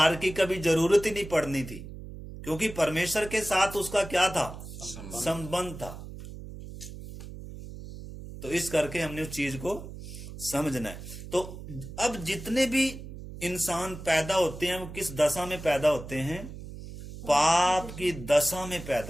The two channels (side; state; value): right; noise; hum, 12 dB below the sound